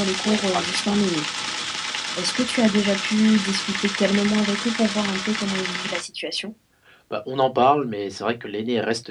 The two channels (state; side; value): identical; both; correlation 1.00